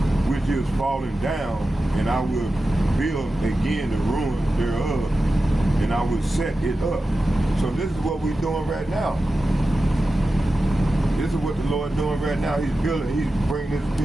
which is fallen down, and I will build again the ruins thereof, and I will set it up. So this is what we're doing right now. This is what the Lord doing right now. He's building, he's bringing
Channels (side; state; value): both; normal; correlation 0.93